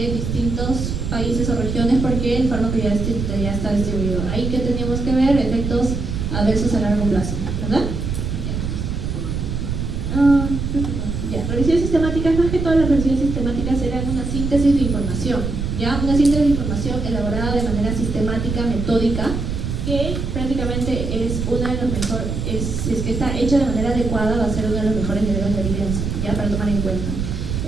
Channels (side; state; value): right; noise; rumble, 3 dB below the sound